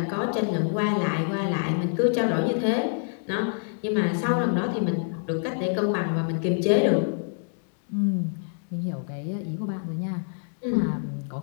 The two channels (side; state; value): right; silent; digital silence